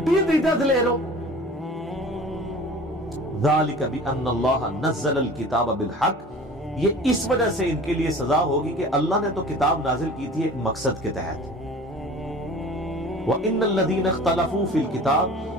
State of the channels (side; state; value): both; normal; correlation 0.42